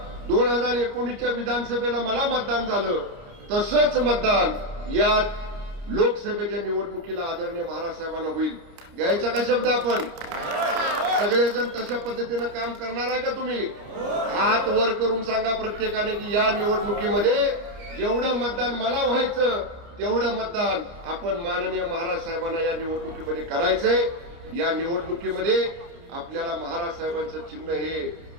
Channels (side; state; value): left; late; 29 ms